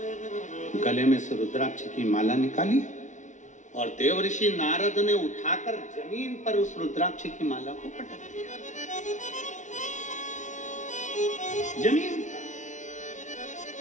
गले में से रुद्राक्ष की माला निकाली और देव ऋषि नारद ने उठाकर जमीन पर उस रुद्राक्ष की माला को पटक दिया। जमीन।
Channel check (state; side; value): late; right; 0.36 ms